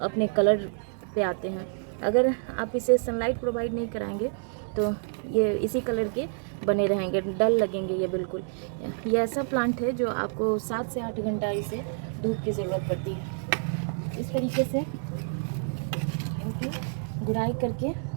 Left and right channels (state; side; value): silent; left; 59 dB below the other